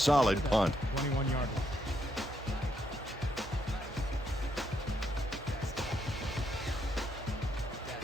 punt. 21-yard line.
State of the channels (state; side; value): normal; both; correlation 0.76